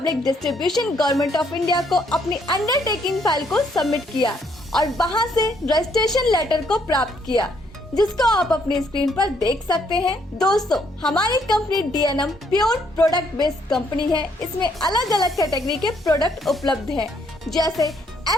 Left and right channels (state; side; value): normal; both; correlation 0.69